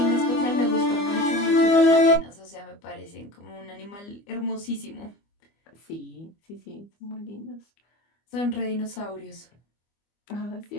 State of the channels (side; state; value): right; late; 25 ms